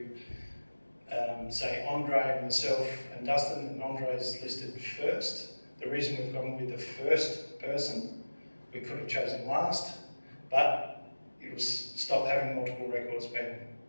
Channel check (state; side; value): inverted; both; correlation -1.00